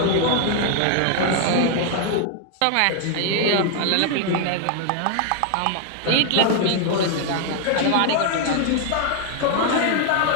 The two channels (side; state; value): both; different; correlation 0.00